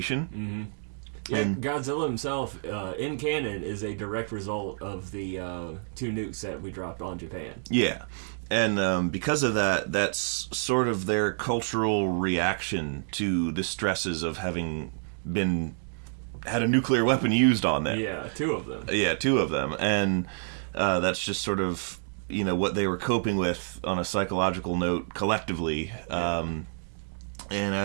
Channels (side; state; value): left; silent; digital silence